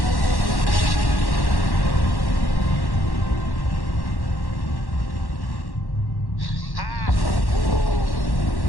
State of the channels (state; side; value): late; right; 1.1 ms